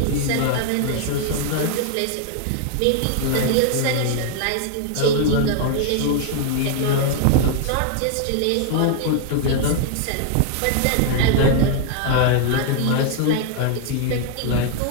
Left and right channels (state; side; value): different; both; correlation 0.00